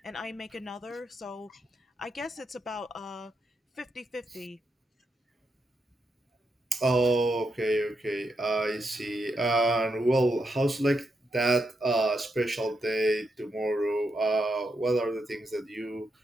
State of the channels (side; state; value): both; normal; correlation 0.83